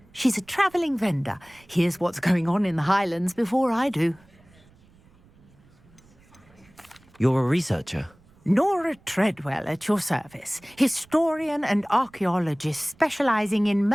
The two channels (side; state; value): right; noise; rumble, 29 dB below the sound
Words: She's a travelling vendor. Hears what's going on in the Highlands before I do. You're a researcher? Nora Treadwell at your service, historian and archaeologist specialising in